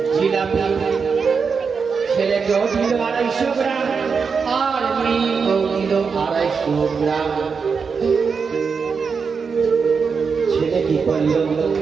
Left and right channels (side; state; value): left; quieter; 5.5 dB